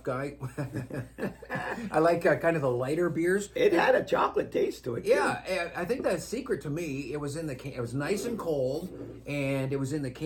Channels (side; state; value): both; identical; correlation 1.00